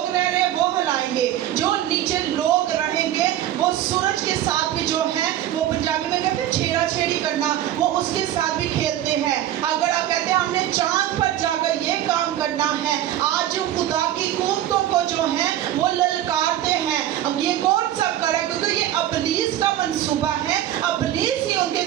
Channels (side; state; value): left; quieter; 12.4 dB